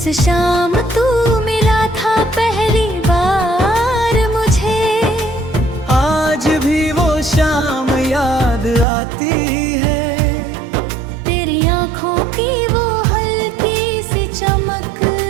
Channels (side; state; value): left; drops out; at 8.8 s